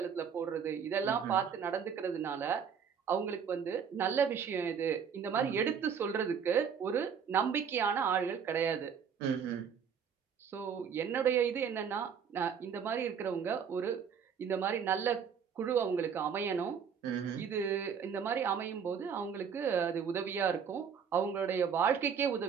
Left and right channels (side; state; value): left; quieter; 7.1 dB